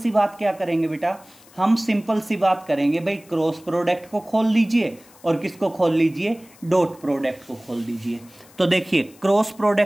बात क्या करेंगे बेटा? हम सिंपल सी बात करेंगे भाई, क्रॉस प्रोडक्ट को खोल लीजिए और किसको खोल लीजिए? डॉट प्रोडक्ट को खोल दीजिए। तो देखिए क्रॉस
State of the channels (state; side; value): noise; left; hiss, 26 dB below the sound